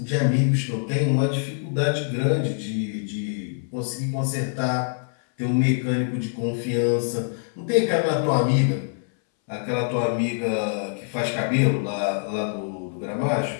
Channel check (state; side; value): silent; right; 61 dB below the other